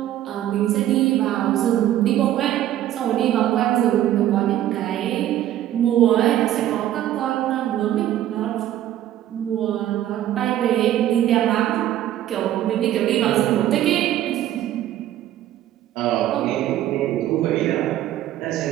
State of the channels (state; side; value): quieter; left; 12.6 dB